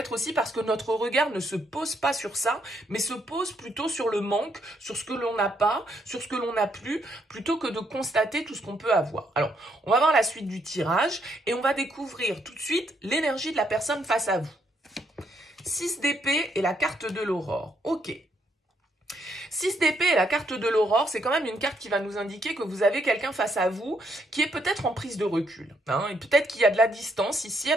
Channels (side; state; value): both; normal; correlation 0.74